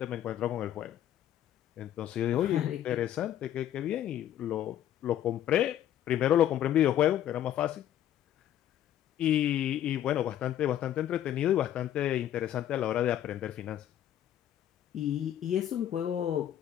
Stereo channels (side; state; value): right; quieter; 11.4 dB